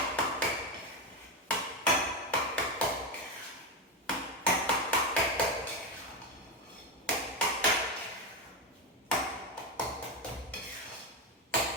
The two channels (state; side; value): normal; both; correlation 0.12